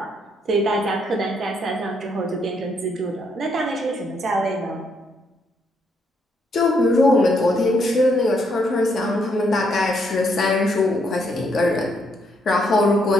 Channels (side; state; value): both; normal; correlation 0.74